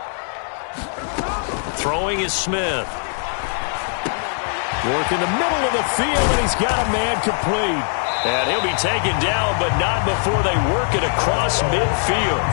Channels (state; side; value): silent; right; 60 dB below the other